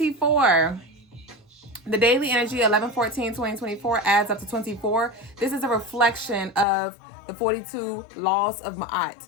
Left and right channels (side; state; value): right; drops out; at 6.7 s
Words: The daily energy 11/14/2024 adds up to 24. This is a reflection of the 42 laws of Ma'at.